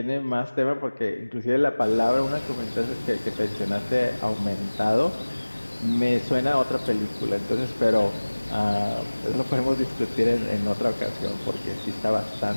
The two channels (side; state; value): both; inverted; correlation -1.00